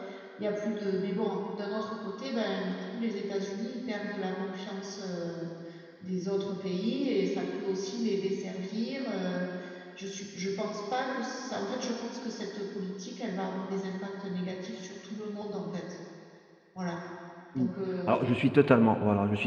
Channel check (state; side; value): identical; both; correlation 1.00